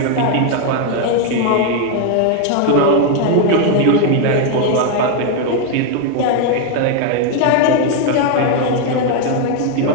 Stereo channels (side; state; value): both; different; correlation 0.01